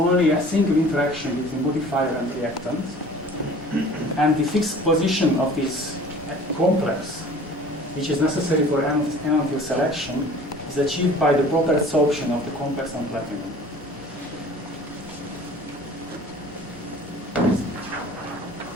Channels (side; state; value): both; normal; correlation 0.47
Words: a single interaction between modifier and reactant. And the fixed position of this complex, which is necessary for enantioselection, is achieved by the proper adsorption of the complex on platinum.